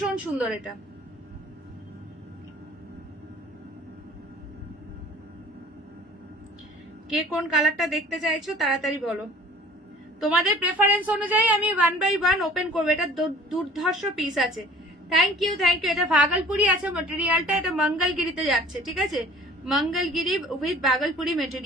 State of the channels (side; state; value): both; normal; correlation 0.49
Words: সুন্দর। এটা কে কোন কালারটা দেখতে চাইছো তাড়াতাড়ি বলো। তোমাদের প্রেফারেন্স অনুযায়ী আমি 1 বাই 1 ওপেন করবো। এটা দুর্ধর্ষ পিস আছে। Thank you thank you. এটা ভাগলপুরি আছে মেটেরিয়ালটা, এটা মঙ্গলগিরিতে যাচ্ছে, ঠিক আছে, মঙ্গলগিরি উইথ ভাগলপুরি